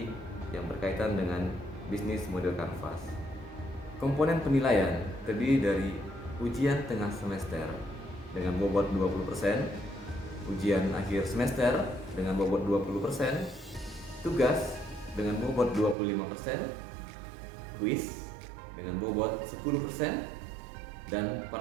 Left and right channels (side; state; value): left; drops out; at 16.0 s